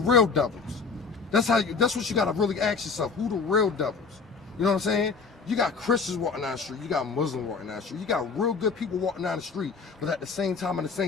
devils? That's what you gotta really ask yourself. Who the real devils? You know what I'm saying? You got Christians walking down the street, you got Muslims walking down the street, you got real good people walking down the street, but at the same time, in the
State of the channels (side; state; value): right; quieter; 5.0 dB